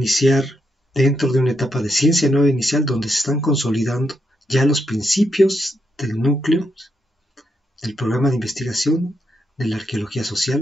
dentro de una etapa de ciencia nueva inicial donde se están consolidando ya los principios del núcleo del programa de investigación de la arqueología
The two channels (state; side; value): normal; both; correlation 0.81